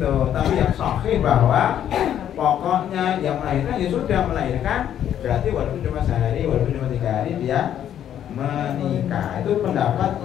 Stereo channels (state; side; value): quieter; right; 10.3 dB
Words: tapi yang sahih bahwa pokoknya yang melahirkan ya sudah melahirkan, berarti walaupun cuma sehari, walaupun cuma 3 hari dia menikah. Itu pendapat